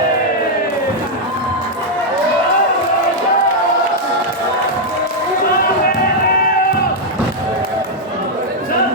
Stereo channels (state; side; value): normal; both; correlation -0.02